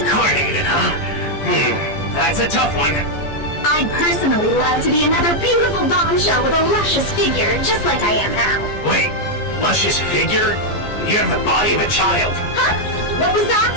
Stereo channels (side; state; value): right; late; 14 ms